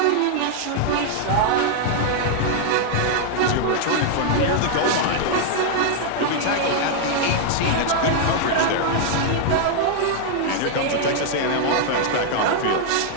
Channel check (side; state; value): both; different; correlation 0.00